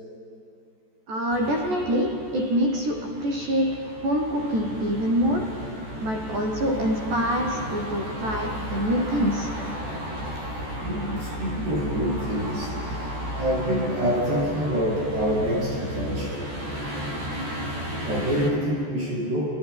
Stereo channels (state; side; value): late; left; 14 ms